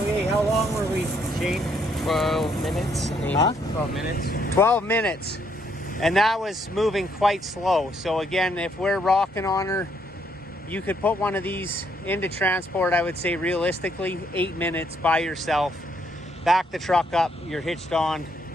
how long were we, Shane? 12 minutes. Huh? 12 minutes. 12 minutes. And that was moving quite slow. So again, if we're rocking on her, you could put one of these into transport, I would say realistically, 8 minutes by yourself. Back the truck up, you're hitched on,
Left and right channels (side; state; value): both; normal; correlation 0.71